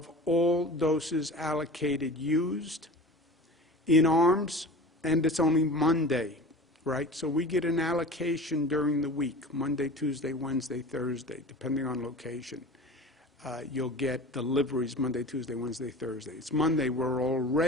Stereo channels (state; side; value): normal; both; correlation 0.36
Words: all doses allocated used in arms, and it's only Monday, right? So we get an allocation during the week, Monday, Tuesday, Wednesday, Thursday, depending on location. You'll get deliveries Monday, Tuesday, Wednesday, Thursday. It's Monday, we're